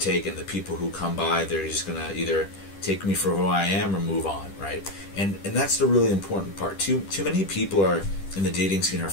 take, and the people who come by, they're just gonna either take me for who I am or move on, right? And that's the really important part. Too many people are in the dating scene are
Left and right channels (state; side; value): late; right; 10 ms